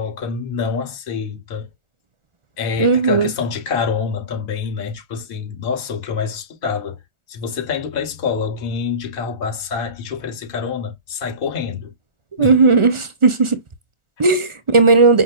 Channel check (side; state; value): left; late; 1.4 ms